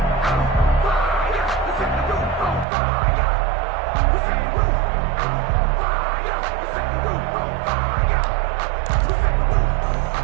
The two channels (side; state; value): left; drops out; at 2.7 s